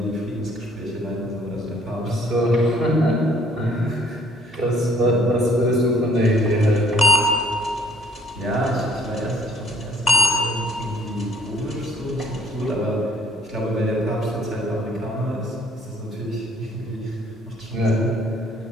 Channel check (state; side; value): normal; both; correlation 0.61